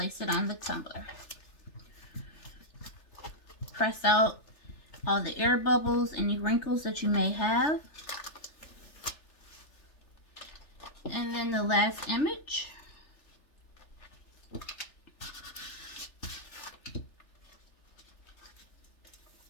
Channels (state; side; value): late; right; 3.4 ms